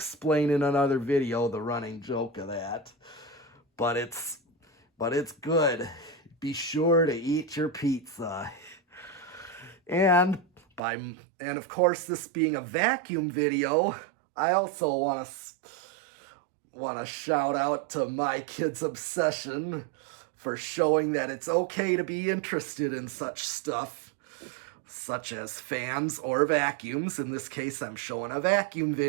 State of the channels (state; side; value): drops out; left; at 10.8 s